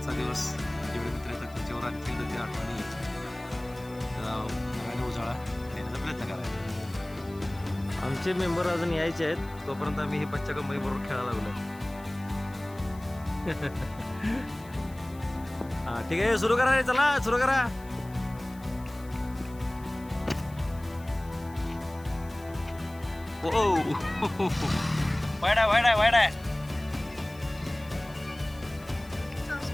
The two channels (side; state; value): left; noise; hiss, 24 dB below the sound